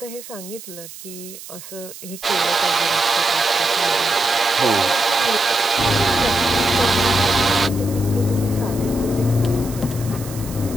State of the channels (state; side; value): noise; right; hiss, 15 dB below the sound